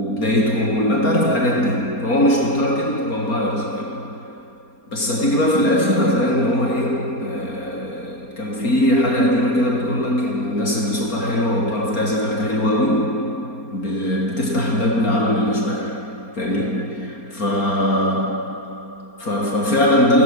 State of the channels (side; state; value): right; late; 4.3 ms